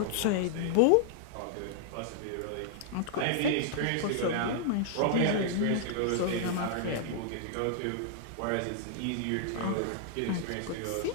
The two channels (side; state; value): both; different; correlation -0.01